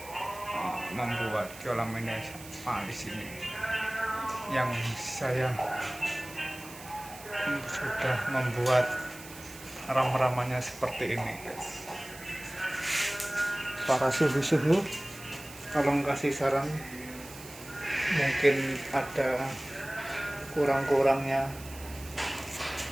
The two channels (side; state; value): right; noise; hiss, 16 dB below the sound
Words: membuat kolam ini di sini. Yang saya sudah membuat ram-ramannya seperti ini, guys. Para suhu-suhu, tolong kasih saran. Mungkin ada kurang-kurangnya